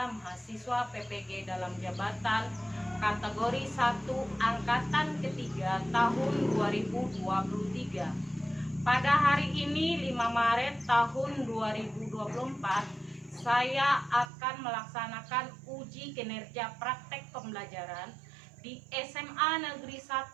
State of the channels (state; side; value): drops out; left; at 14.2 s